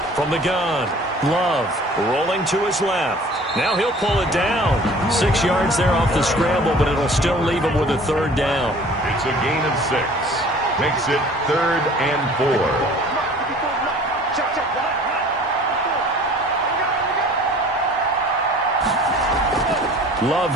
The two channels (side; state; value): both; normal; correlation 0.48